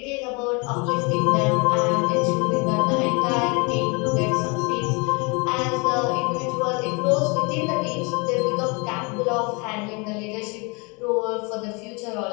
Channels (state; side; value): quieter; right; 30.3 dB